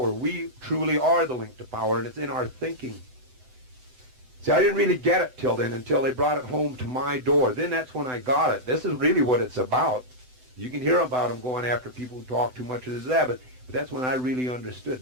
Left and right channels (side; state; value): left; late; 7.9 ms